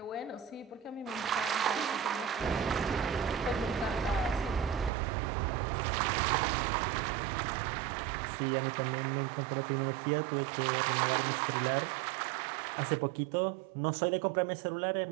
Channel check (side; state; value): left; drops out; at 4.9 s